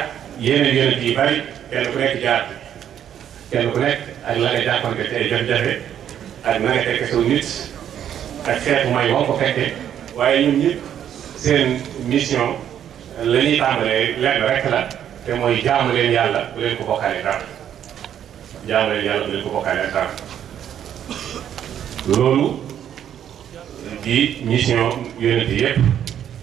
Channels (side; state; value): left; quieter; 9.8 dB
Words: yeneen yonent yi bari kenn ku nekk jaar kenn ku nekk ak la nga jànkonte ci ay jafe-jafe ak na nga fekke saw nit ak xeetu may woo ko fekke waaye ñun ñëpp seen mission la ñuy tàmbalee lenn rek la te mooy jaamu leen yàlla bu leen ko bokkaale dara jaamu leen yàlla bu leen ko bokkaale ak dara loolu di mission yonent yëpp